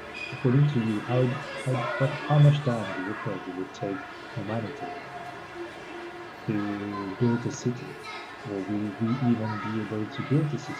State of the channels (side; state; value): both; identical; correlation 1.00